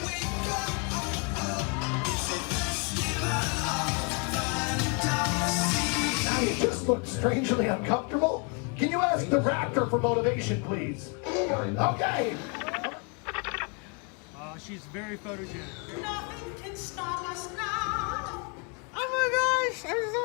You just look strangely uncomfortable. Can you ask the raptor for motivation, please? Okay. She's very photogenic. Nothing can stop us now. Oh my gosh, I'm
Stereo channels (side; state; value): right; quieter; 35.4 dB